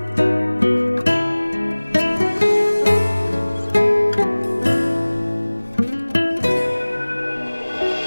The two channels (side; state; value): both; inverted; correlation -1.00